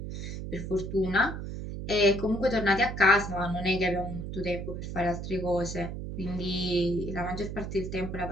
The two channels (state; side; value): noise; right; hum, 6 dB below the sound